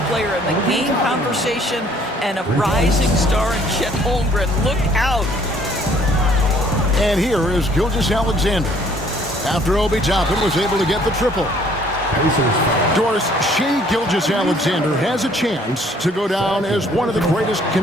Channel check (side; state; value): both; normal; correlation 0.60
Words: player in the game conversation and a rising star in Chet Holmgren. Look out. And here is Gilgeous-Alexander. After Obi Toppin was able to get the triple. Doris, Shai Gilgeous-Alexander has a chance to go down as one of the greatest